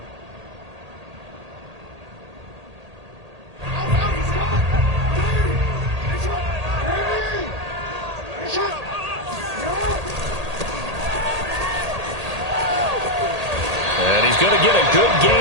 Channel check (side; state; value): left; late; 1.8 ms